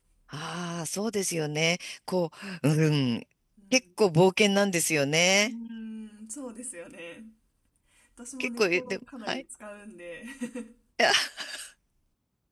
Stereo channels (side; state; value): both; identical; correlation 1.00